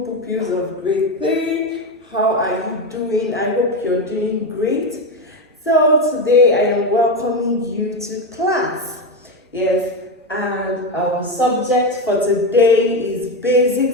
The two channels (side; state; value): both; normal; correlation 0.14